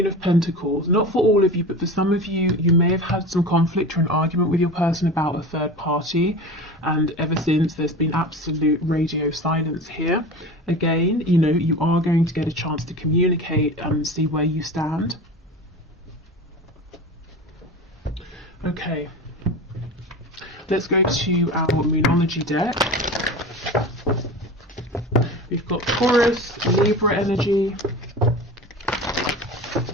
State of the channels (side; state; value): both; normal; correlation 0.32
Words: of Pentacles, not for all of you, but for some of you, you may have had some conflict or an argument with your person about a third party, and ever since there's been absolute radio silence here. Again, you know, you are going to get a chance to communicate and see where you stand. Okay, let's go to our Moonology deck. We've got Taurus, Libra energy.